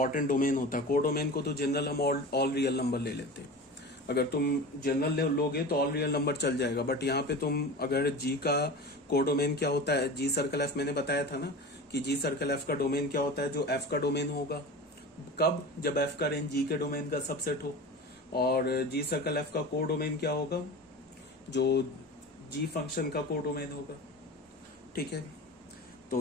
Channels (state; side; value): normal; both; correlation 0.32